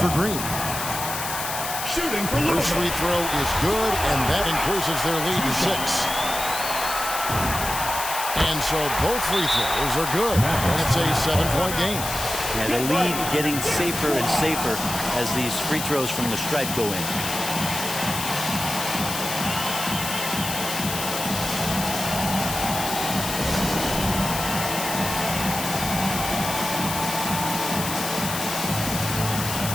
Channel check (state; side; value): noise; left; hiss, 5 dB below the sound